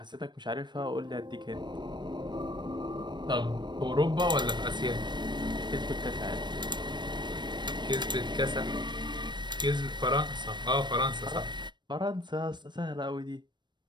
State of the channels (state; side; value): late; left; 0.22 ms